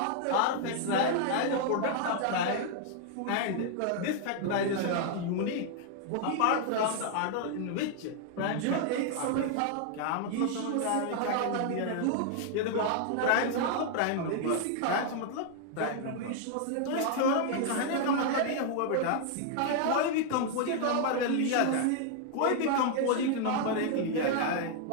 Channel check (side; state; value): both; different; correlation 0.00